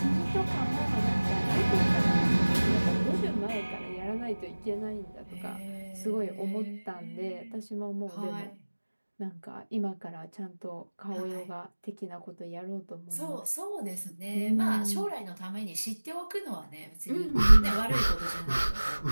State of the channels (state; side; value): inverted; both; correlation -1.00